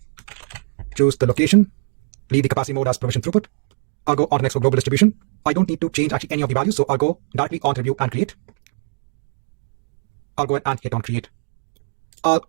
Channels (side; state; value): left; silent; 60 dB below the other